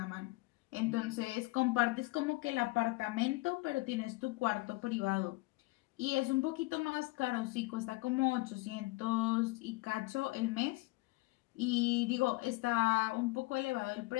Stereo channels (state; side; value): quieter; right; 22.4 dB